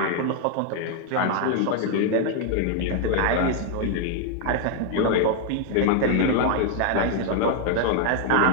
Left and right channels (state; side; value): different; both; correlation 0.00